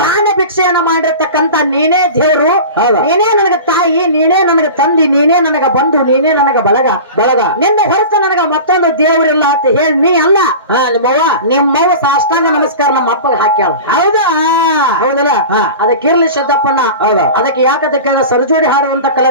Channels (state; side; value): inverted; both; correlation -0.34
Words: ಭಿಕ್ಷೆಯನ್ನ ಮಾಡಿರ್ತಕ್ಕಂತ ನೀನೇ ದೇವ್ರು, ನೀನೇ ನನಗ ತಾಯಿ, ನೀನೇ ನನಗ ತಂದಿ, ನೀನೇ ನನಗ ಬಂಧು, ನೀನೇ ನನಗ ಬಳಗ. ನಿನ್ನ ಹೊರತು ನನಗ ಮತ್ತೊಂದು ದೇವ್ರಿಲ್ಲ ಅಂತ ಹೇಳಿ ನೀ ಅಲ್ಲ ನಿಮ್ಮವ್ವ ಸಾಷ್ಟಾಂಗ ನಮಸ್ಕಾರ ನಮ್ಮ ಅಪ್ಪಗೆ ಹಾಕ್ಯಾಳ. ಹೌದಲ್ಲ? ಅದಕ್ಕಿರ್ಲಿ ಶಬ್ದಪ್ಪಣ್ಣ. ಅದಕ್ಕೆ ಯಾಕದಕ್ಕೆ ಸರ್ಜೋಡಿ ಹಾಡುವಂತ